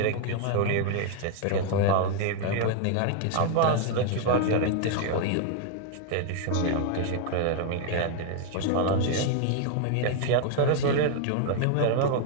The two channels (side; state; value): both; different; correlation 0.00